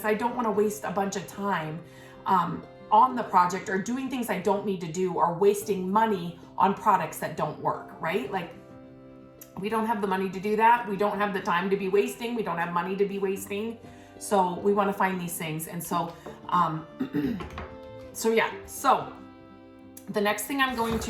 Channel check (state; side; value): identical; both; correlation 1.00